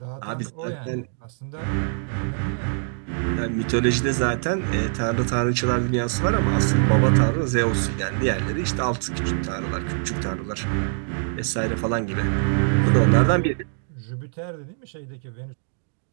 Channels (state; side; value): silent; left; 57 dB below the other